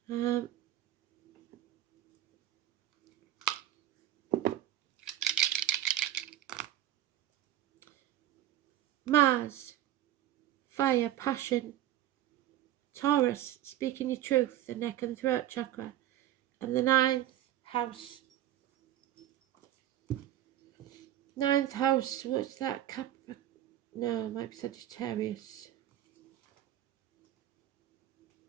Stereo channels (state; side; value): quieter; left; 12.8 dB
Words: Mars, fire, passion. Taurus, speaking your truth, the neck and throat chakra. And the ninth house. Ninth house, what's that? No, it might be Sagittarius.